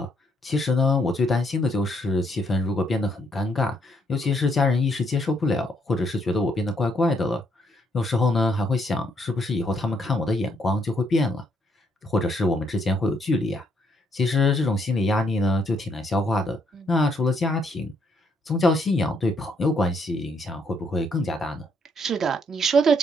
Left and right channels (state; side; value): normal; both; correlation 0.72